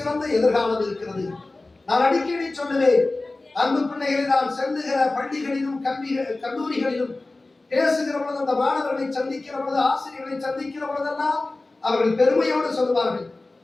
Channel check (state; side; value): quieter; right; 3.1 dB